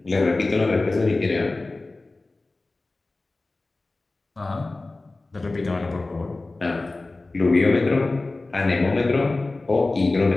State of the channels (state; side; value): quieter; right; 3.2 dB